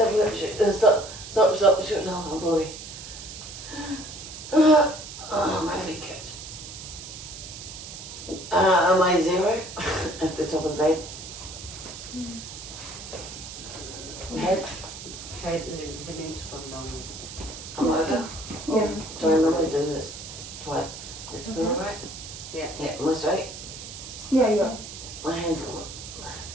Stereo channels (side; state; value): right; noise; hiss, 11 dB below the sound